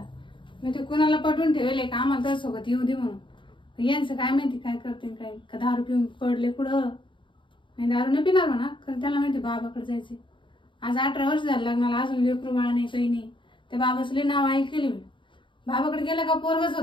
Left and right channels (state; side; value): late; right; 0.24 ms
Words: मी ते कुणाला पटवून ठेवले का आम्हाला तर सोबत येऊ दे म्हणून यांचं काय माहिती काय करते काय का दारू पिऊन पडले कुठं नाही दारू नाही पिणार म्हणा कारण त्याला माहिती बाबाकडे जायचे आज 18 वर्ष झालं लग्नाला अजून लेकरू बाळा नाही काही नाही त्या बाबाचं लय नाव ऐकले मी बाबाकडे गेला का पोरगच